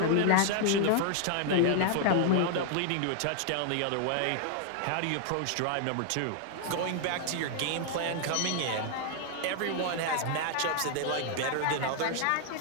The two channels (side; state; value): both; different; correlation 0.00